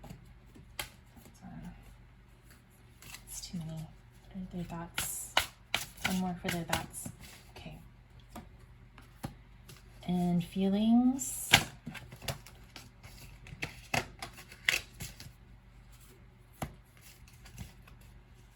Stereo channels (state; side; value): identical; both; correlation 1.00